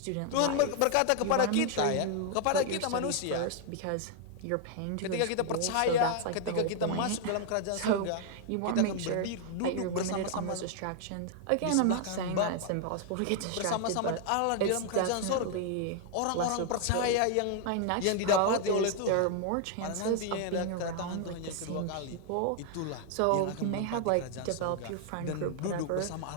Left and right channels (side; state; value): both; different; correlation 0.00